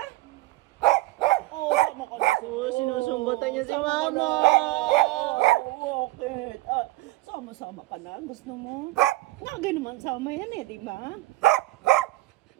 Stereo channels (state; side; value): quieter; left; 19.6 dB